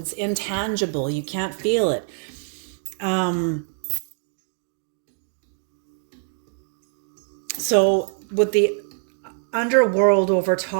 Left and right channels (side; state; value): left; silent; digital silence